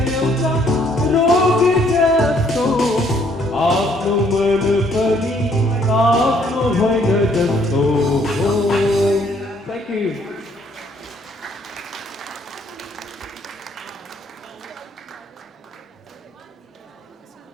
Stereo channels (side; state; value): both; normal; correlation 0.65